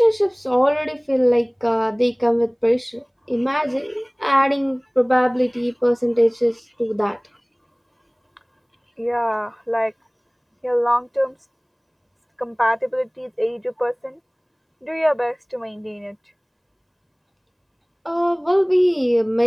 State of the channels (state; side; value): identical; both; correlation 1.00